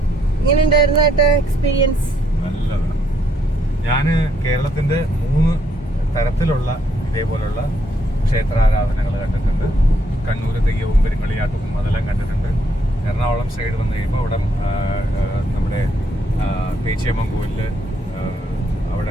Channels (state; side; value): normal; both; correlation 0.72